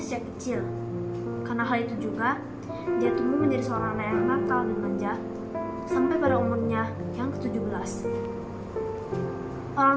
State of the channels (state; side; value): identical; both; correlation 1.00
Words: sejak kecil. Karena hal itu juga, dia tumbuh menjadi seorang anak yang nakal dan manja sampai pada umurnya yang ke-17.